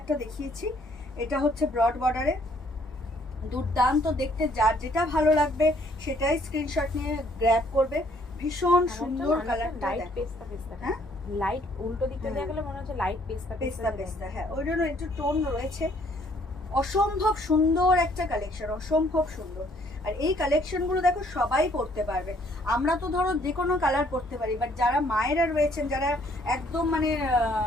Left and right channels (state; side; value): normal; both; correlation 0.64